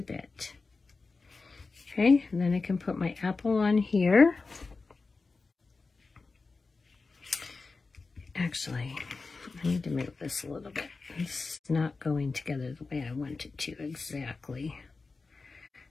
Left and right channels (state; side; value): quieter; right; 4.0 dB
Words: bit. Okay, and then I can put my apple on here. Actually, I need to move this a little bit. It's not going together the way I want it to exactly.